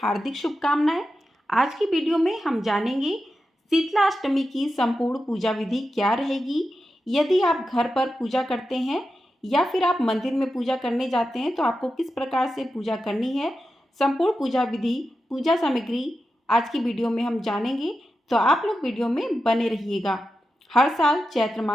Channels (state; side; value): normal; both; correlation 0.90